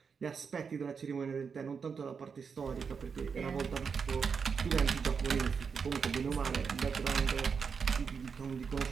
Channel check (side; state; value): left; quieter; 5.9 dB